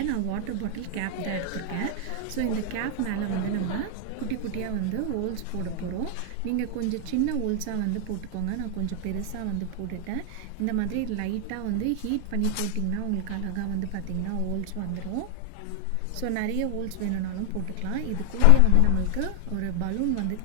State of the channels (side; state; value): both; different; correlation 0.00